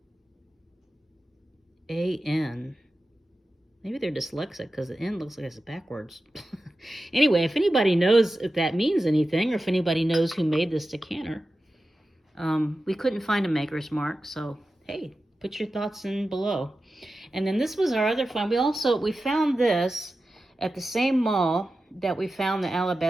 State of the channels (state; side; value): normal; both; correlation 0.93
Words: Maybe they're dyslexic because the N looks like it's backwards. Anyway, if anybody knows if that means anything or if anybody knows who made this decanter, we couldn't find a maker's mark, so hey, put your thoughts in below. And then this was our other find. We found this at the same mall that we found the